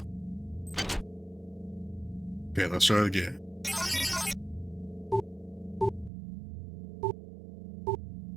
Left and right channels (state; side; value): drops out; left; at 6.1 s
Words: Okay, let's try it again.